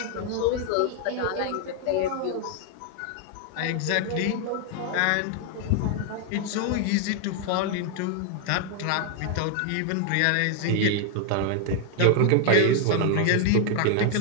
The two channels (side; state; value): both; different; correlation 0.00